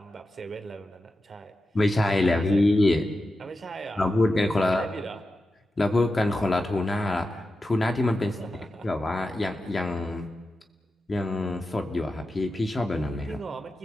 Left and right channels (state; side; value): normal; both; correlation 0.91